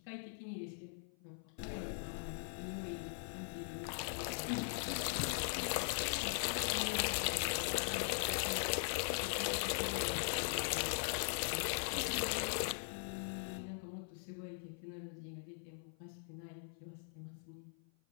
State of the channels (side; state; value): right; silent; 50 dB below the other